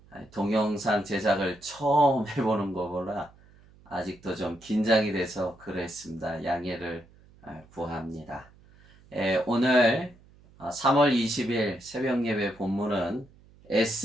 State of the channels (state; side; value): noise; right; hum, 26 dB below the sound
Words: 동영상 제작을 처음 해보는 거보라 아직도 좀 긴장이 돼서 그랬습니다. 양해를 구합니다. 오늘 3월 20일 새벽 예배 본문은